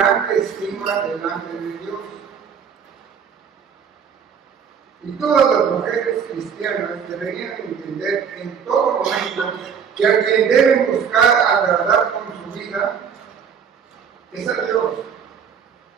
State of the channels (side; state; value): left; quieter; 7.0 dB